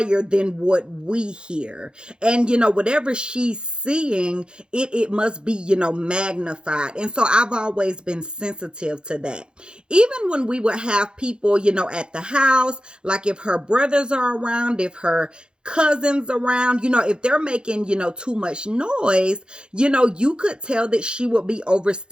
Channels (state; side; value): late; left; 0.050 ms